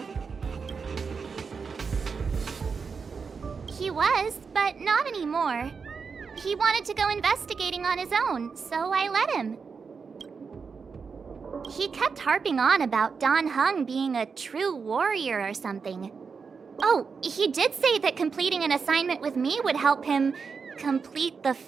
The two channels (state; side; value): quieter; left; 5.4 dB